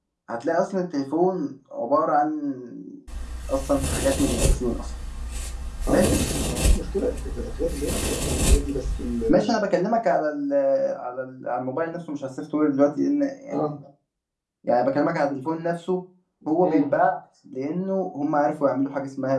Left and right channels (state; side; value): identical; both; correlation 1.00